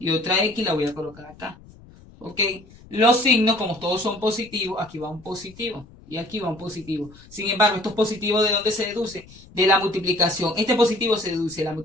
otra x la voy a colocar acá. Ok. Los signos, como todos son positivos, aquí va un positivo. Y aquí va un positivo. Sin embargo, estos positivos, ¿de dónde se deduce? De la multiplicación. Este positivo se deduce de la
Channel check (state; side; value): noise; left; rumble, 23 dB below the sound